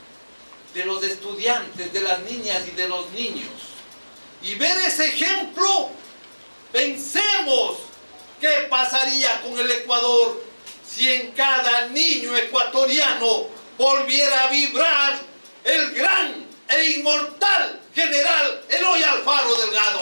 de los estudiantes, de las niñas y de los niños, y ver ese ejemplo, pensemos qué pasaría con el Ecuador si en cada niño ecuatoriano volviera a vibrar el gran e inmortal general Eloy Alfaro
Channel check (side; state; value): both; inverted; correlation -1.00